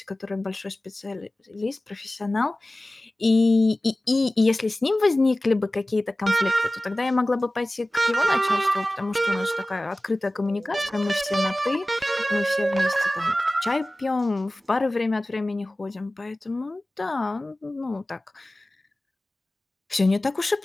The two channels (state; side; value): normal; both; correlation 0.97